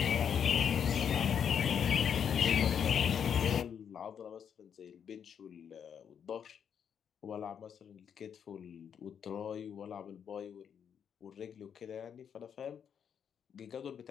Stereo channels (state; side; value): quieter; right; 7.9 dB